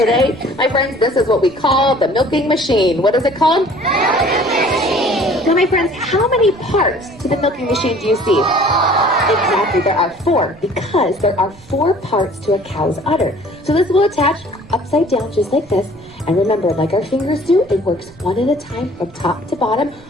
My friends, this is what we call the milking machine. What is it called? Milking machine. Now, my friends, how many parts to the milking machine do you see? Exactly, there are 4, because there are 4 parts to a cow's udder. So this will attach upside down just like this. And remember, like our fingers do, it works one at a time from top to bottom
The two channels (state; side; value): noise; right; rumble, 24 dB below the sound